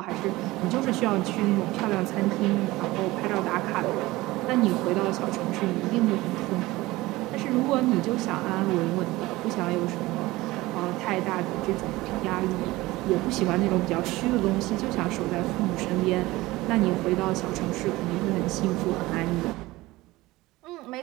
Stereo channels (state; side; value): quieter; left; 19.3 dB